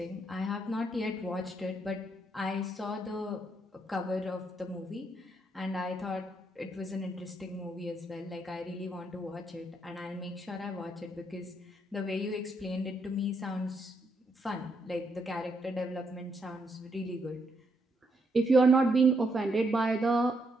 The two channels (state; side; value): normal; both; correlation 0.76